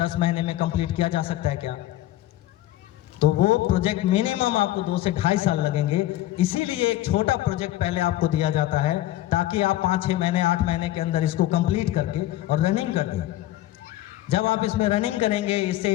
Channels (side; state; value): right; quieter; 14.9 dB